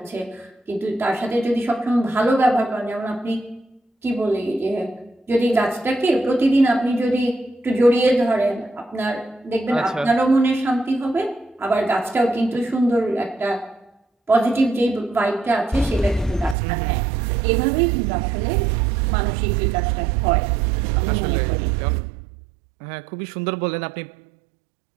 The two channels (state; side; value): drops out; left; at 16.6 s